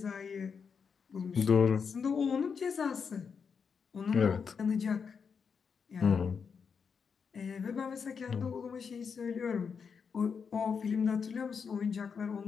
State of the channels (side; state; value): right; quieter; 6.1 dB